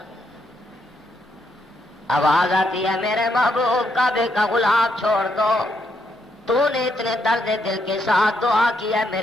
آواز آتی ہے میرے محبوب کعبے کا غلاف چھوڑ دو، تو نے اتنے درد دل کے ساتھ دعا کیا،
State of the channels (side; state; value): both; normal; correlation 0.77